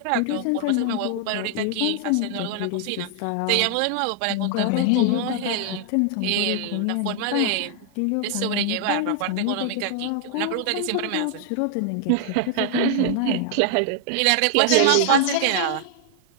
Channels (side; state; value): both; different; correlation -0.01